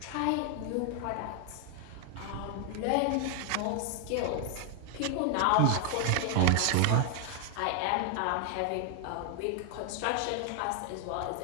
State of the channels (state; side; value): different; both; correlation 0.00